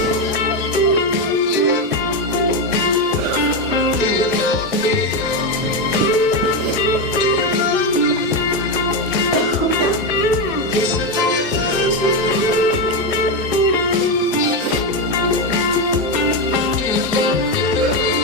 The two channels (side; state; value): both; normal; correlation 0.10